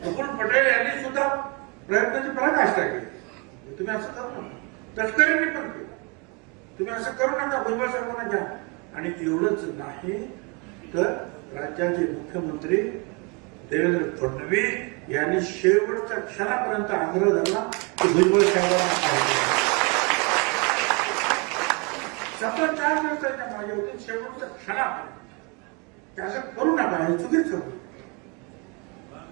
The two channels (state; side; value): quieter; left; 31.6 dB